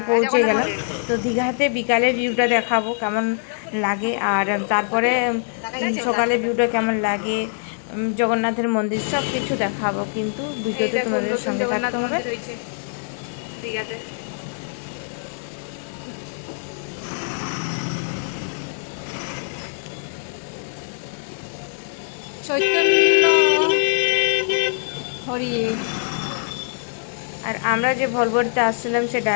পৌঁছে গেলাম, তো দীঘাতে বিকালের ভিউটা দেখাবো কেমন লাগে, আর তারপরে সকালে ভিউটা কেমন লাগে, জগন্নাথের মন্দির সব কিছু দেখাবো। কিন্তু ভিডিওতে তোমাদের সঙ্গে থাকতে হবে। দীঘাতে চৈতন্য হরি। আর আমরা যে ভলভোতে আসছিলাম, সে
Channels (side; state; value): right; silent; digital silence